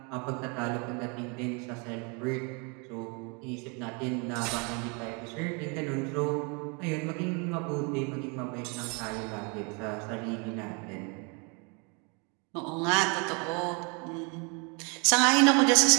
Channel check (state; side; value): quieter; left; 33.1 dB